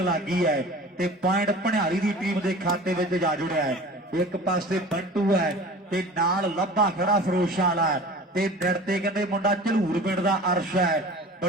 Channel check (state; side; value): normal; both; correlation 0.40